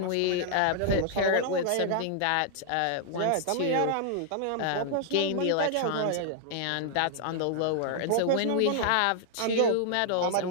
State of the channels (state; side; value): different; both; correlation -0.01